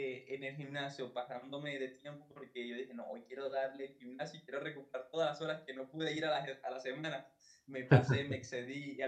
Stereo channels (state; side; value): identical; both; correlation 1.00